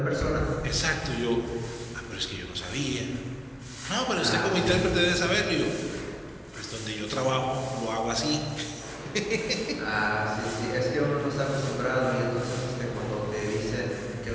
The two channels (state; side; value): identical; both; correlation 1.00